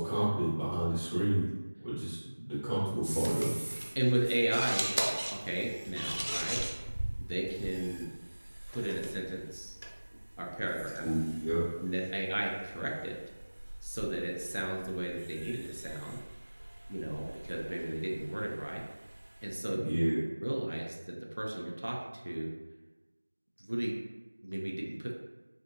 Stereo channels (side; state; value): both; inverted; correlation -1.00